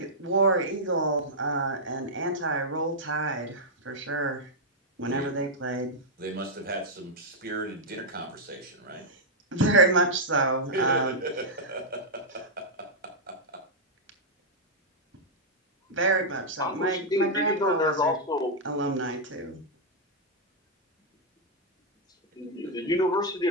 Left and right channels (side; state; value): both; normal; correlation -0.06